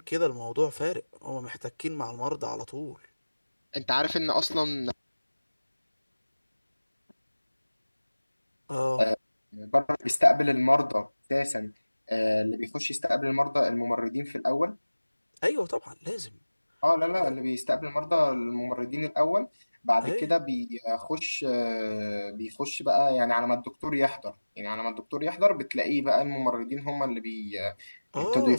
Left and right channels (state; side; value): inverted; both; correlation -1.00